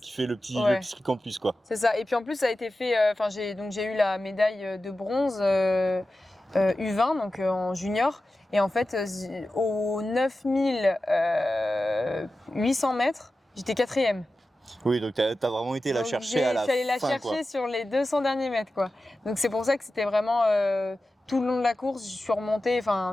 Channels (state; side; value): normal; both; correlation 0.94